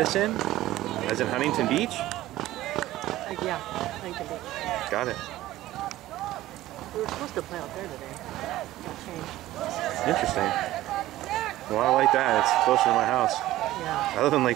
in, as in Huntington Beach. Yeah, Huntington Beach. Got it. We were supposed to play out there today. Got changed. Interesting. Well, I like that. It's closer to my house. Yeah. I live in Lake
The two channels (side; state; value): left; quieter; 15.5 dB